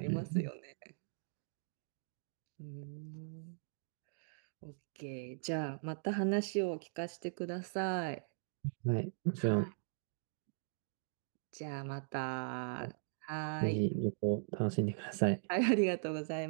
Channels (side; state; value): left; silent; digital silence